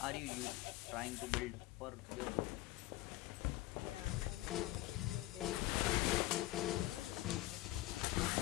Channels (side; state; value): right; quieter; 17.3 dB